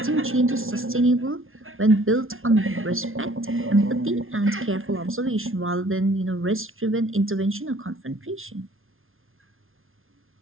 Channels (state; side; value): late; left; 0.60 ms